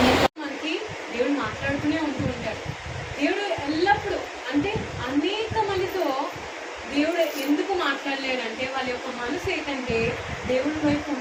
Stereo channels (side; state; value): both; identical; correlation 1.00